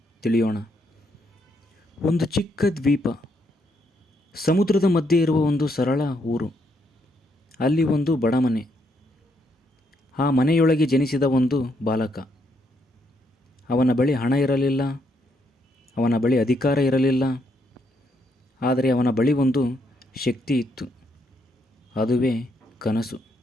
ತಿಳಿಯೋಣ. ಒಂದು ಚಿಕ್ಕ ದ್ವೀಪ, ಸಮುದ್ರದ ಮಧ್ಯೆ ಇರುವ ಒಂದು ಸರಳ ಊರು. ಅಲ್ಲಿ ಒಂದು ಬಡ ಮನೆ. ಆ ಮನೆಯೊಳಗೆ ಜನಿಸಿದ ಒಂದು ಬಾಲಕ. ಅವನ ಬಳಿ ಹಣ ಇರಲಿಲ್ಲ, ಅವನ ಬಳಿ ಅಧಿಕಾರ ಇರಲಿಲ್ಲ. ಆದರೆ ಅವನ ಬಳಿ ಒಂದು ಶಕ್ತಿ ಇತ್ತು, ಅದುವೇ ಕನಸು.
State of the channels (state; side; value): normal; both; correlation 0.75